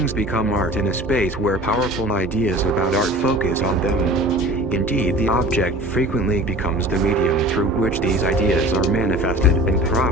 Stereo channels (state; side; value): normal; both; correlation 0.41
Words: become art in a space where powerful ideas about art focus on them. Indeed, the object frequently becomes the medium through which these ideas are manifested and